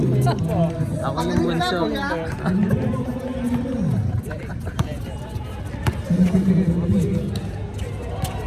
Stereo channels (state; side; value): identical; both; correlation 1.00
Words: Ako yung bunso.